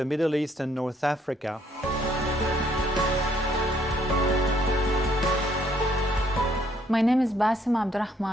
Middle East and North Africa. My name is Basim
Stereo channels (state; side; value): normal; both; correlation 0.67